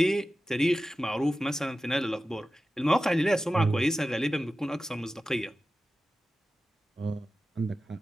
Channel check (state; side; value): normal; both; correlation 0.94